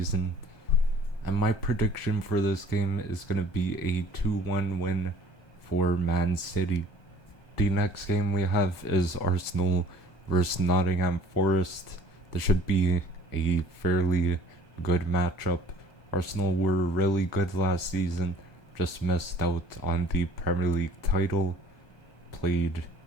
And my prediction for this game is going to be a 2-1 win for Man City. The next game we have is Arsenal versus Nottingham Forest. This should be a fairly good matchup. Arsenal were really good last season, just missed out on the Premier League title. Played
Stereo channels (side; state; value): right; late; 1.3 ms